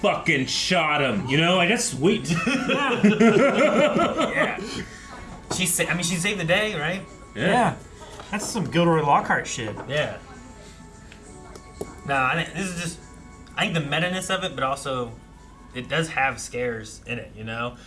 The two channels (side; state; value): both; identical; correlation 1.00